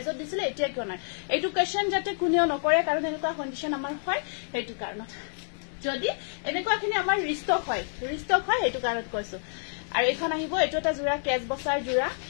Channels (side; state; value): right; silent; digital silence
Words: দিছিলে এতিয়া কিয় নাই এইটো কোৱেশ্চন যাতে কোনেও নকৰে কাৰণ এনেকুৱা কন্ডিশন আমাৰ হয় হেতু কাৰণত যদি এনেকুৱাখিনি আমাৰ ৰিষ্টক হয় হেতু কাৰণত কৈছো আৰু এখন আহিব এটো এটা জোৰা কেজ বসাৰ জোৰা